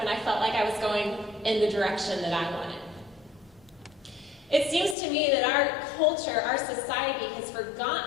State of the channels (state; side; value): drops out; right; at 5.0 s